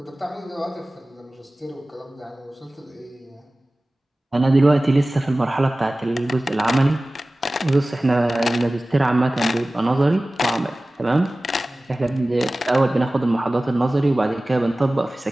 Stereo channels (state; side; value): normal; both; correlation 0.97